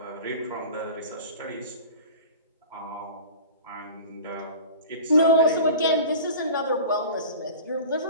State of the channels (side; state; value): both; inverted; correlation -0.38